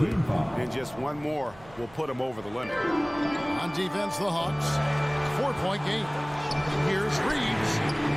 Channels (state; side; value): noise; right; hum, 22 dB below the sound